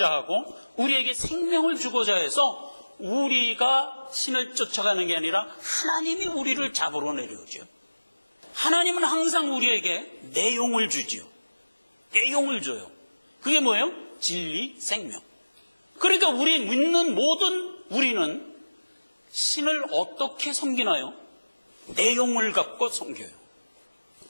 하고 우리에게 생명을 주고자 해서 우리가 신을 쫓아가는 게 아니라 하나님이 우리를 잡으러 내려오죠. 하나님은 항상 우리에게 내용을 주지요. 내용을 줘요. 그게 뭐예요? 진리, 생명. 그러니까 우리 믿는 모든 우리는 신을 어떻게 섬기나요? 내용을 갖고 섬겨요.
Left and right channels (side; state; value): both; inverted; correlation -1.00